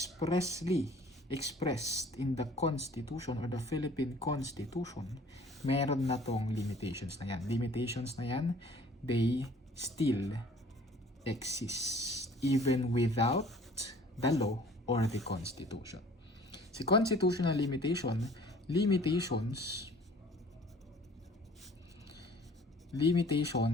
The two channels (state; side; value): normal; both; correlation 0.51